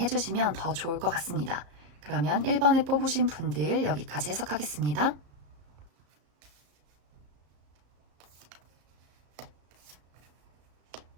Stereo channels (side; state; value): left; late; 34 ms